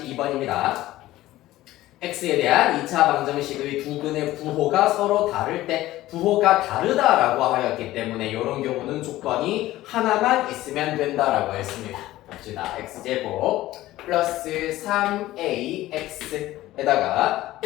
x에 대한 2차 방정식의 두 근의 부호가 서로 다를 때 부호가 다르다라고 하였기 때문에 이런 경우는 조건이 하나만 있으면 된다라고 했습니다. 봅시다. x제곱 플러스 3ax에다가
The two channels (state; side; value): quieter; right; 16.0 dB